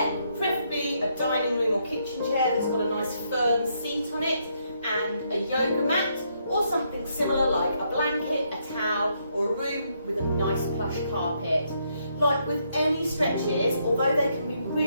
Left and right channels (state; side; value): inverted; both; correlation -0.75